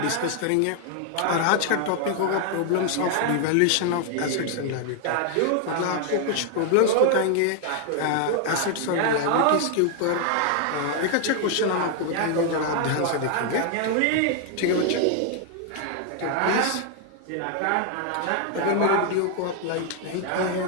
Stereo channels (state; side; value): different; both; correlation 0.00